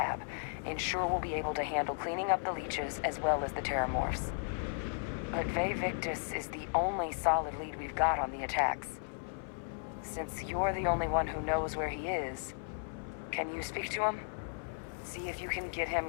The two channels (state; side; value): silent; right; 54 dB below the other